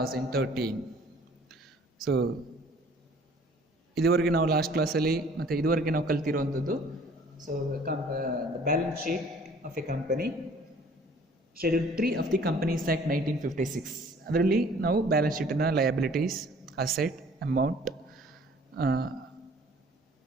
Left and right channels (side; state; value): both; normal; correlation 0.54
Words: So ಇದುವರೆಗೆ ನಾವು last ಕ್ಲಾಸಲ್ಲಿ ಮತ್ತು ಇದುವರೆಗೆ ನಾವು ಕಲ್ತಿರುವಂಥದ್ದು balance sheet of a company schedule 3 of the companies act 1956. ಅದರಲ್ಲಿ ನಾವು balance ಶೀಟನ್ನು ಲಯಬಿಲಿಟೀಸ್, ಅಸೆಟ್, ಅಮೌಂಟ್